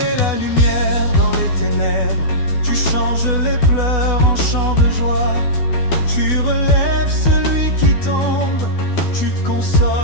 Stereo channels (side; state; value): right; late; 12 ms